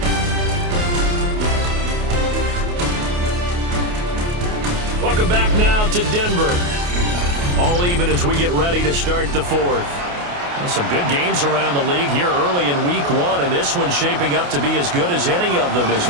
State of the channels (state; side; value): late; left; 28 ms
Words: Welcome back now to Denver. All even as we get ready to start the 4th. Some good games around the league here early in week 1, and this one's shaping up to be as good as any of them as